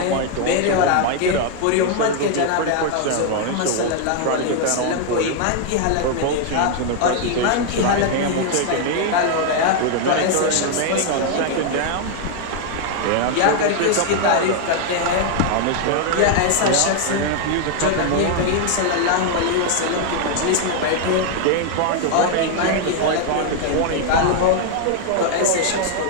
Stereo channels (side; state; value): both; different; correlation 0.00